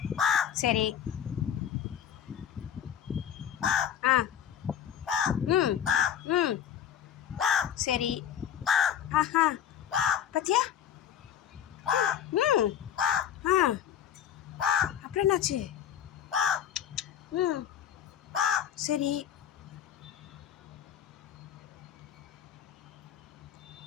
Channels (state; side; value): quieter; right; 9.5 dB